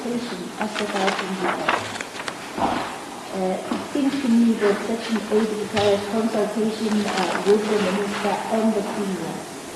as set out in the Act? It seems to me that Section 8 requires consultation with the Minister and the Premier.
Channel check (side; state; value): both; identical; correlation 1.00